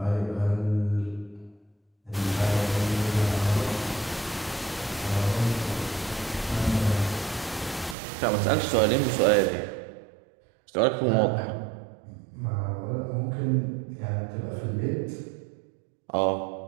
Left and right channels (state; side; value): drops out; left; at 8.0 s